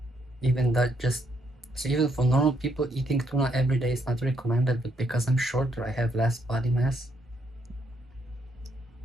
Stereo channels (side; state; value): both; normal; correlation 0.74